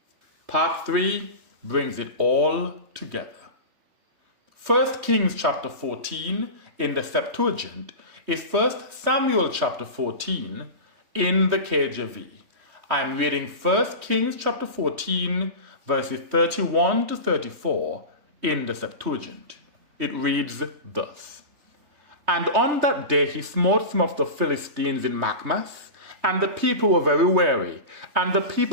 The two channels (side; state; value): left; late; 3.2 ms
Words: Part 3 brings it all together. 1 Kings chapter 14 in the Septuagint is 1 Samuel chapter 14 in the KJV. I'm reading 1 Kings chapter 14 verses 31 to 34 in the Septuagint. It reads thus: And on that day he smote some of the Philistines in Machmas, and the people were very weary, and the